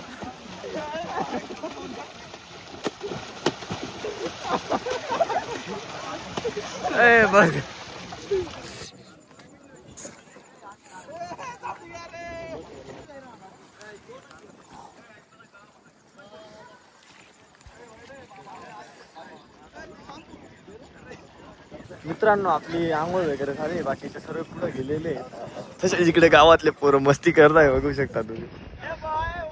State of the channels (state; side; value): identical; both; correlation 1.00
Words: ए बघ मित्रांनो, आपली आंघोळ वगैरे झाली, बाकीचे सर्व पुढे गेलेले तसे इकडे गावातले पोरं मस्ती करताय, बघू शकता तुम्ही.